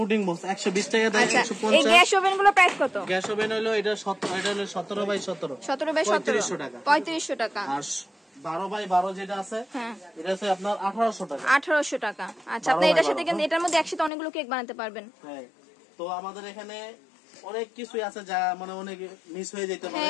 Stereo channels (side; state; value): right; drops out; at 14.1 s